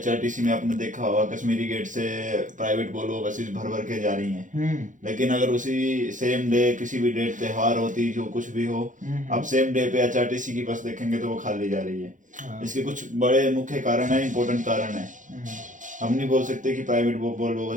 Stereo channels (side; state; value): left; late; 0.37 ms